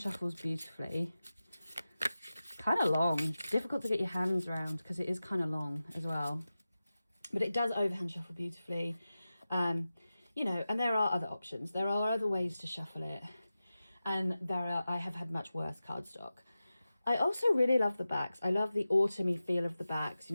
beautifully. Kind of long, difficult to get your hands around because it is kind of long as well, but it does overhand shuffle beautifully. You know, and there are other options. There are other ways to shuffle it, and I have had much worse cardstock. I also really love the backs. I love the autumny feel of the backs. You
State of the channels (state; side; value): inverted; both; correlation -0.94